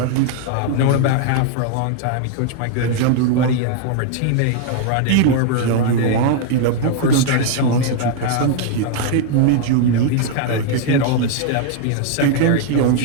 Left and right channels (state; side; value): different; both; correlation 0.00